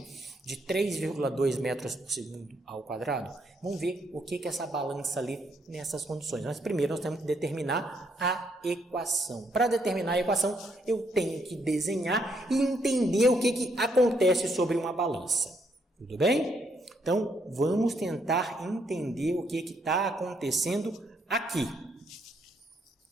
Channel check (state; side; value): normal; both; correlation 0.73